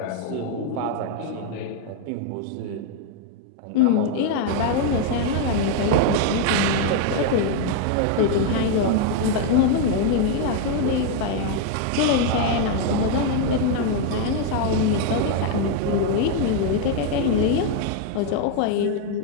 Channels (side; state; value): both; different; correlation 0.01